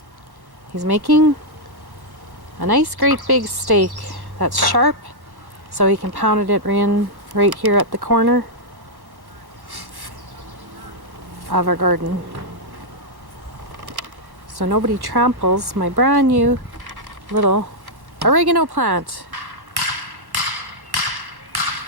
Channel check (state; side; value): late; left; 1.1 ms